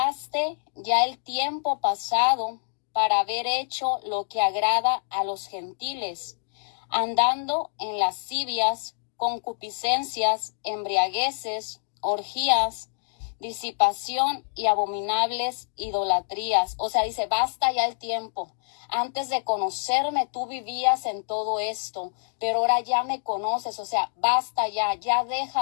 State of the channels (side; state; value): right; silent; digital silence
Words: ya el tiempo pasado para haber hecho lo que agrada a los gentiles, andando en lascivias, concupiscencias, embriagueces, orgías, disipación y abominables idolatrías. O sea, dice, basta ya el tiempo. Antes de conocerme, tú vivías en todo esto, pero ahora ya me conoces. O sea, basta ya, ya